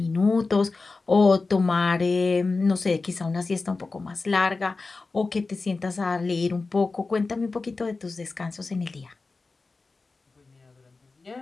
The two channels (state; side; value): quieter; right; 3.8 dB